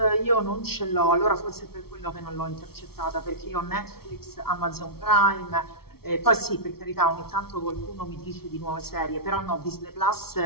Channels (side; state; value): right; late; 0.94 ms